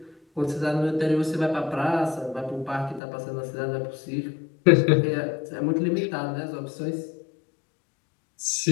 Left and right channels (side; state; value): right; drops out; at 3.0 s